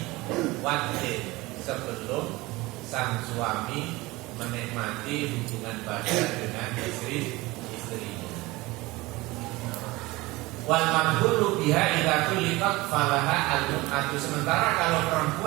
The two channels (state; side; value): quieter; left; 21.2 dB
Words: wadin, sebelum sang suami menikmati hubungan badan dengan istrinya. Wal madhulu biha idza tuliqat falaha al-mut'atu. Sementara kalau